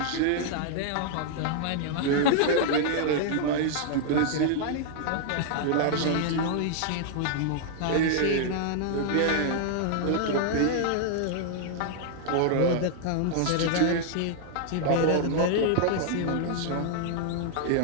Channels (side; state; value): both; different; correlation -0.01